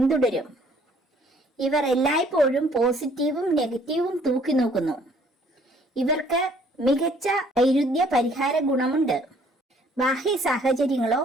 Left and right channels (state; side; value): normal; both; correlation 0.60